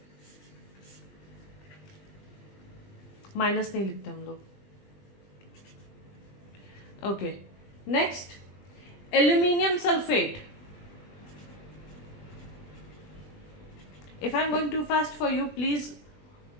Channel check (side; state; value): right; late; 20 ms